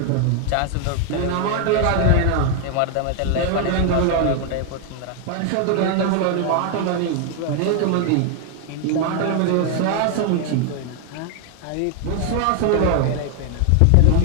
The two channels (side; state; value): both; different; correlation 0.00